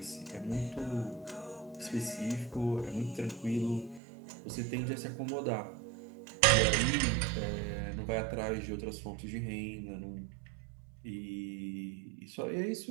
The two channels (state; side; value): drops out; left; at 4.0 s